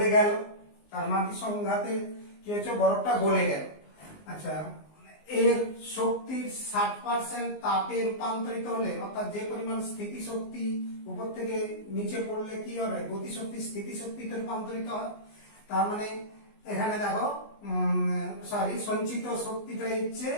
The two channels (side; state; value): right; late; 19 ms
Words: গেল। তার মাটির সংঘাতে কি হচ্ছে, বরফটা গলে গেল। আচ্ছা, এর শক্তির 60% তাপে রূপান্তরিত হলে, অর্থাৎ যে পরিমাণ স্থিতি শক্তি উপর থেকে নিচে পড়লে কি হবে, গতিশক্তি স্থিতি শক্তিতে রূপান্তরিত হয়। তার মানে এখানে দেখো সঞ্চিত শক্তিটা হচ্ছে